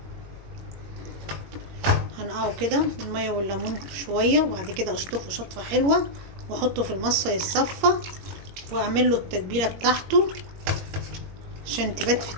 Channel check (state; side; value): late; left; 21 ms